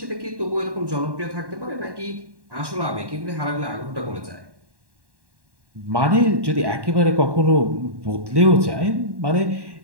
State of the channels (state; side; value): late; left; 1.1 ms